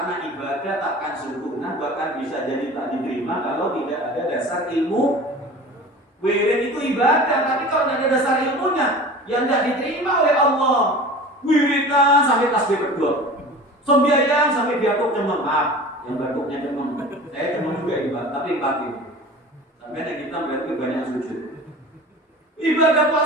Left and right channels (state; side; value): normal; both; correlation 0.38